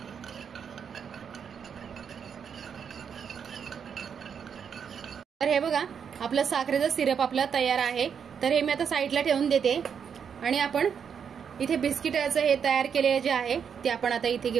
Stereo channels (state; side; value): quieter; left; 7.2 dB